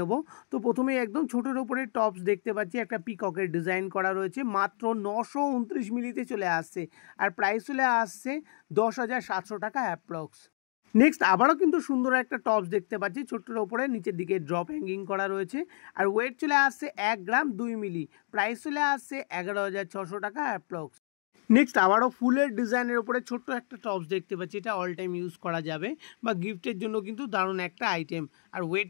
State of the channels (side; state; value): right; silent; 58 dB below the other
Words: তো প্রথমে একদম ছোটোর ওপরে টপস দেখতে পাচ্ছি, একটা পিককের ডিজাইন করা রয়েছে, মাত্র 929 মিলিতে চলে আসছে আর প্রাইস চলে আসছে 10,700 টাকা অ্যাপ্রক্স। নেক্সট আবারও কিন্তু সুন্দর একটা টপস দেখতে পাচ্ছি, ছোট্টর ওপরে নিচের দিকে ড্রপ হ্যাঙ্গিং করা রয়েছে আর ওয়েট চলে আসছে 1 গ্রাম 2 মিলি, প্রাইস চলে আসছে 11,600 টাকা অ্যাপ্রক্স। নেক্সট আবারও ফুলের ডিজাইনের ওপরে ছোট্ট একটা টপস দেখতে পাচ্ছি, এটা অল টাইম ইউজ করা যাবে বা গিফটের জন্য কিন্তু দারুণ একটা আইটেম আর ওয়েট